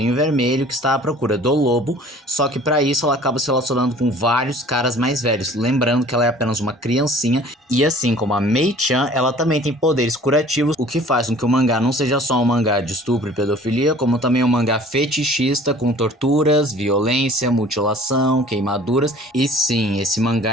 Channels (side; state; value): both; normal; correlation 0.49